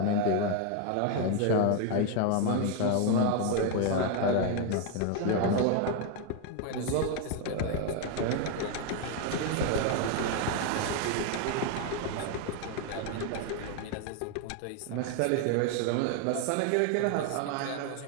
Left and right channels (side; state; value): both; different; correlation 0.01